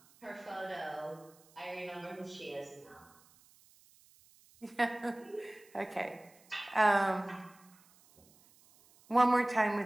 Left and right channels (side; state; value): right; noise; hiss, 28 dB below the sound